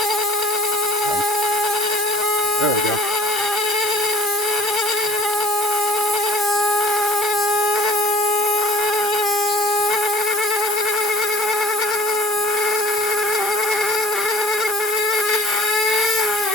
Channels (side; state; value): both; normal; correlation 0.47